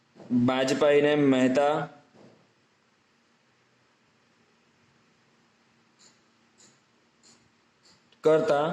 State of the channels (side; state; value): both; identical; correlation 1.00